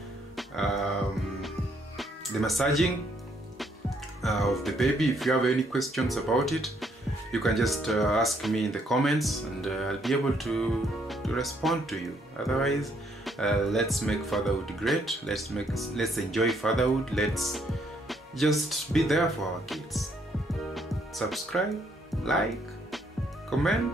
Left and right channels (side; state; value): both; normal; correlation 0.70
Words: The massaging of the baby, if you have any questions about it, you can just ask me in the comments, and I'll be able to respond to you. Otherwise, Let's make fatherhood great. Let's enjoy fatherhood. Let's just be there for our kids. Subscribe, like,